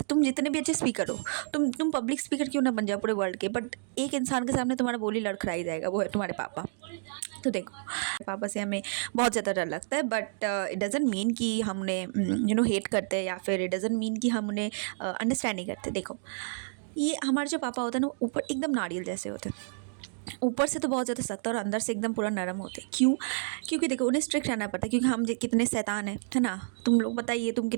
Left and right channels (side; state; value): left; silent; digital silence